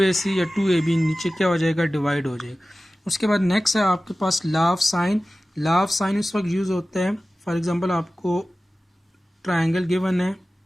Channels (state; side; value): normal; both; correlation 0.96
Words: या 2ab नीचे क्या हो जाएगा, डिवाइड हो जाएगा। उसके बाद नेक्स्ट है आपके पास law of sine. Law of sine इस वक्त यूज़ होता है, फॉर एग्जांपल आपको ट्रायंगल गिवन है